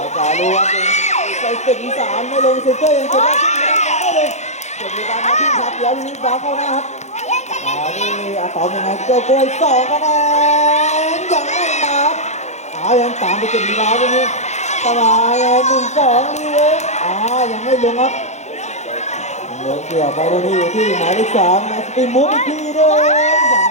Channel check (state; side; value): late; right; 0.33 ms